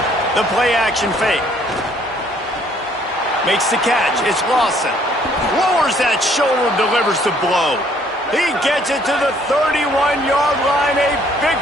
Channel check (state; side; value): normal; both; correlation 0.63